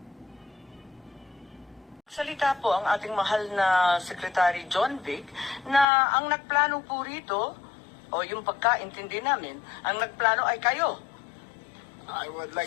Salita po ang ating mahal na Secretary John Vic na ang nagplano po rito, o yung pagkaintindi namin, ang nagplano ay kayo. I would like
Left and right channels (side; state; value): right; drops out; at 5.9 s